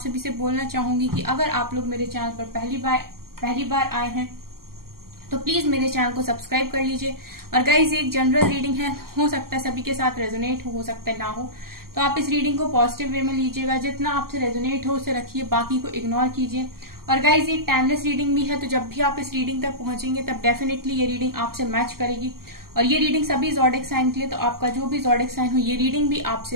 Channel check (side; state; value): left; late; 0.93 ms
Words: से बोलना चाहूंगी कि अगर आप लोग मेरे चैनल पर पहली बार आए हैं तो प्लीज मेरे चैनल को सब्सक्राइब कर लीजिए। और गाइस, एक जनरल रीडिंग है, हो सकता है सभी के साथ रेजोनेट हो सकता है ना हो, तो आप इस रीडिंग को पॉजिटिव वे में लीजिएगा। जितना आपसे रेजोनेट हो उसे रखिए, बाकी को इग्नोर कीजिए। और गाइस, ये टाइमलेस रीडिंग भी है, तो जब भी आप इस रीडिंग तक पहुंचेंगे तब डेफिनेटली ये रीडिंग आपसे मैच करेगी। और ये रीडिंग सभी ज़ोडिक साइन के लिए, तो आपका जो भी ज़ोडिक साइन हो ये रीडिंग भी